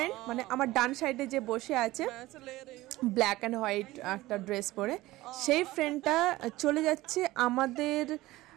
মানে আমার ডান সাইডে যে বসে আছে ব্ল্যাক অ্যান্ড হোয়াইট একটা ড্রেস পরে, সেই ফ্রেন্ডটা চলে যাচ্ছে আমাদের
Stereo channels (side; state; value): left; quieter; 18.1 dB